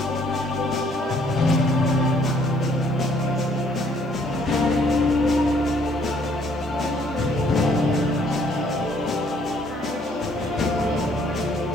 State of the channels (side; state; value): both; normal; correlation 0.64